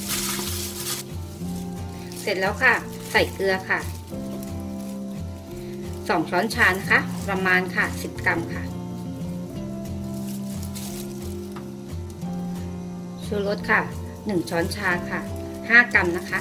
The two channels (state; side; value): identical; both; correlation 1.00